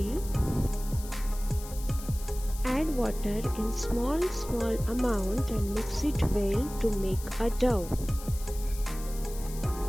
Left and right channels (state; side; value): noise; left; hiss, 15 dB below the sound